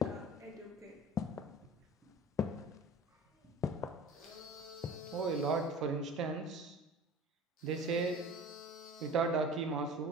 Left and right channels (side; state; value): both; normal; correlation 0.40